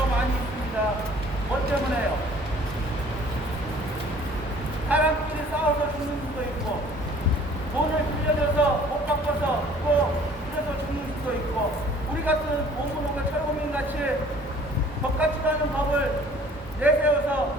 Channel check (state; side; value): normal; both; correlation 0.53